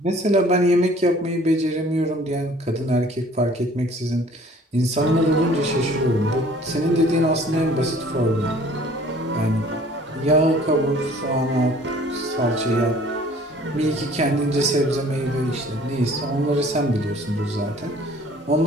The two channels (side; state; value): both; normal; correlation 0.53